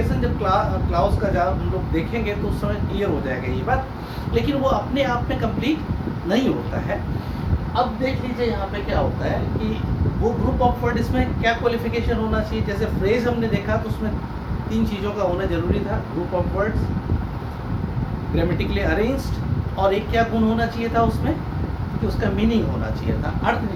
जब क्लाउज का जब हम लोग देखेंगे तो उस समय क्लियर हो जाएगा ये बात, लेकिन वो अपने आप में कंप्लीट नहीं होता है। अब देख लीजिए यहाँ पे क्या होता है कि वो ग्रुप ऑफ वर्ड, इसमें क्या क्वालिफिकेशन होना चाहिए? जैसे फ्रेज हमने देखा तो उसमें 3 चीज़ों का होना जरूरी था, group of words, grammatically arranged, और एक क्या गुण होना चाहिए था उसमें कि उसका मीनिंग होना चाहिए था, अर्थ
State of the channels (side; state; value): both; identical; correlation 1.00